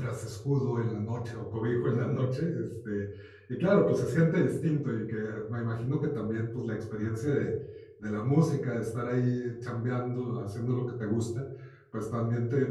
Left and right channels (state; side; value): identical; both; correlation 1.00